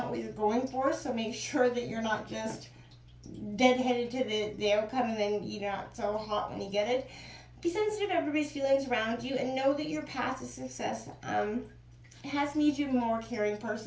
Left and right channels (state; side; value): identical; both; correlation 1.00